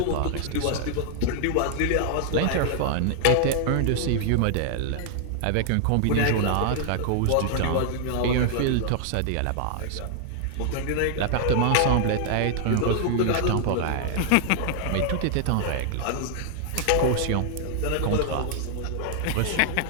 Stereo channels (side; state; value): both; different; correlation 0.00